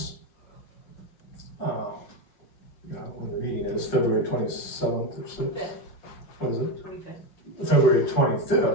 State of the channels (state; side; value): late; right; 5.6 ms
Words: you know, when the meeting is February 27th or 6th. What is it? 25th. February